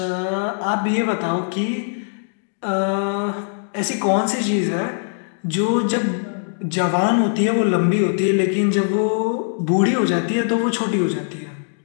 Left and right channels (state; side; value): silent; right; digital silence